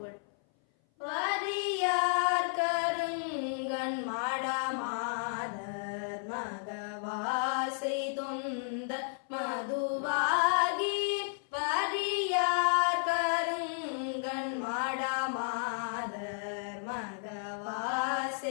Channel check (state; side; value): silent; right; 56 dB below the other